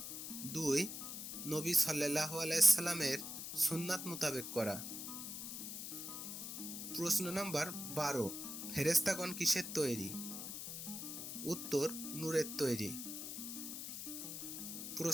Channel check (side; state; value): left; noise; hiss, 6 dB below the sound